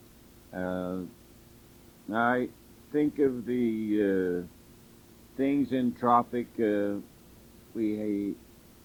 I think of the things in Tropic, we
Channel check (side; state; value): both; identical; correlation 1.00